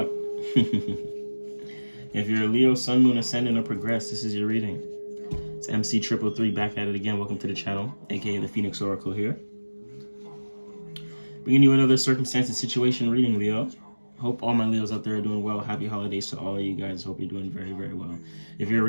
If you're a Leo, Sun, Moon, Ascendant, or Progress, this is your reading. It's MC333 back at it again. Welcome to the channel, aka the Phoenix Oracle here. Bringing you another circumstance and situation reading, Leo. Hope all my Leos out there are doing well. Happy holidays to all of you guys. Hope you're doing very, very well. If you're a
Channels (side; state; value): both; inverted; correlation -1.00